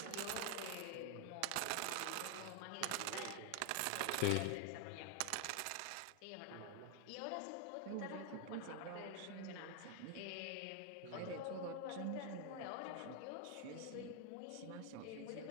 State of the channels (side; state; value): both; different; correlation 0.00